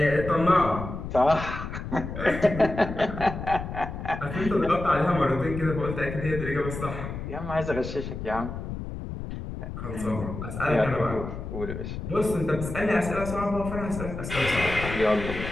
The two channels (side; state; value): left; noise; rumble, 7 dB below the sound